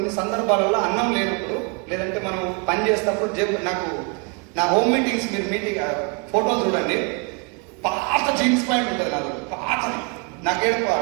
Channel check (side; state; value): left; quieter; 32.9 dB